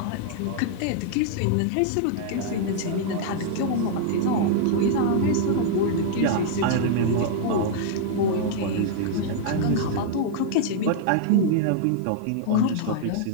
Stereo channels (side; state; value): both; different; correlation -0.01